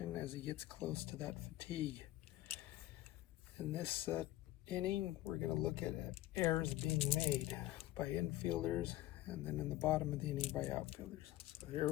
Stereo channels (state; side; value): quieter; right; 15.7 dB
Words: as he gets close to that fatigue. In this inning, we're going to look at errors being made by infielders, and then in the bottom of the inning by outfielders. So here